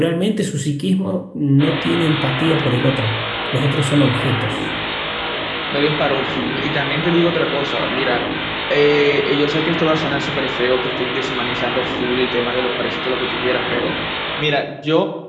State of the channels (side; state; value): both; identical; correlation 1.00